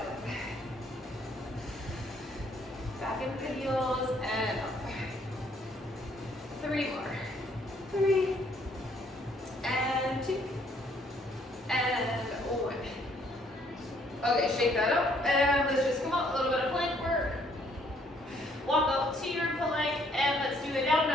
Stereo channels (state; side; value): normal; both; correlation 0.66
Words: Back into the heels and up. 3 more. 3 and 2 and 1. Okay, shake that up and let's just come up. A little bit of plank work. Walk up to your plank and let's do a down